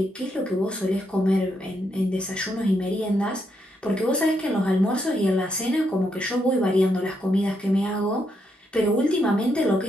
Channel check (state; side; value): normal; both; correlation 0.79